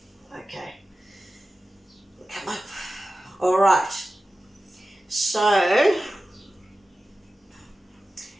Okay. Come up. All right. So,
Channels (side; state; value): both; normal; correlation 0.94